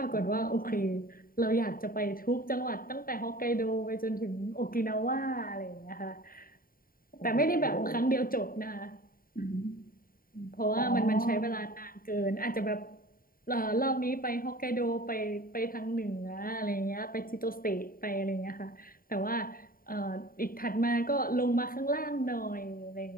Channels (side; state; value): right; late; 0.42 ms